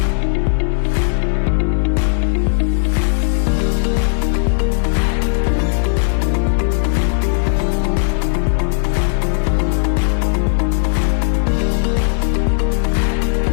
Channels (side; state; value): right; silent; digital silence